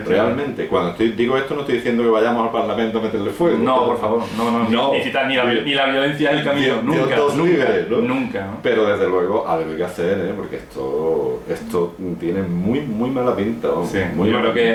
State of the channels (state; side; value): identical; both; correlation 1.00